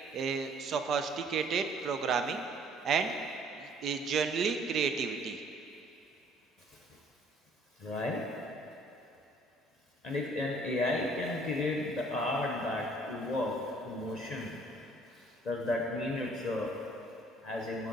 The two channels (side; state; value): both; normal; correlation 0.58